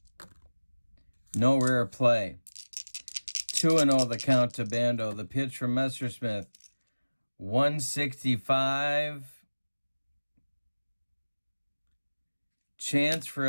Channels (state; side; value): inverted; both; correlation -1.00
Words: No rare play. 2-0 the count to Bando. The pitch from Messersmith. 165. Chance for